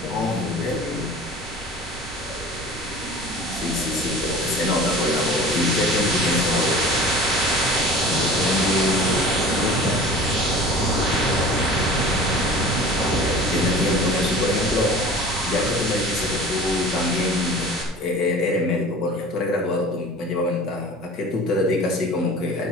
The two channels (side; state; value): both; normal; correlation 0.40